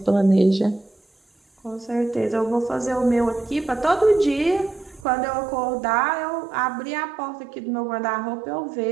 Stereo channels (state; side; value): drops out; left; at 5.1 s